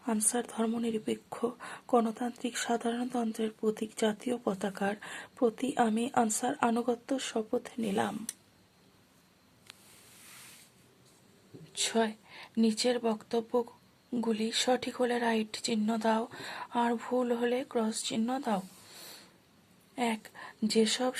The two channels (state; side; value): identical; both; correlation 1.00